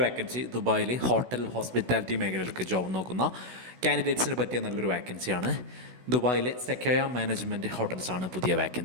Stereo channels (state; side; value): late; left; 16 ms